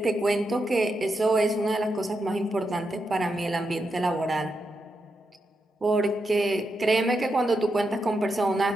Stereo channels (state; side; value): normal; both; correlation 0.85